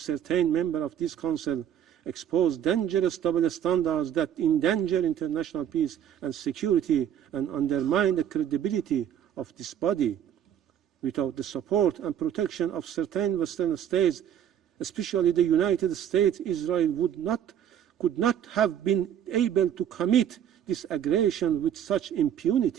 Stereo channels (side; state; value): left; quieter; 9.7 dB